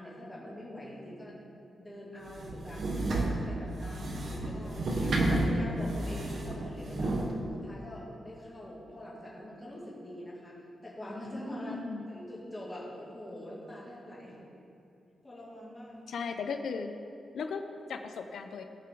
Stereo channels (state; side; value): normal; both; correlation 0.83